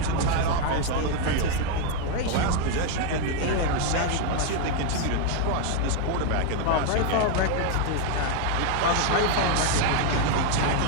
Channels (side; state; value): both; different; correlation 0.01